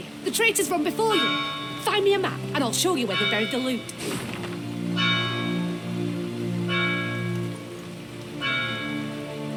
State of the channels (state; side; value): identical; both; correlation 1.00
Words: the traitors run before you. Find me a map and I'll show you where they buried the loot.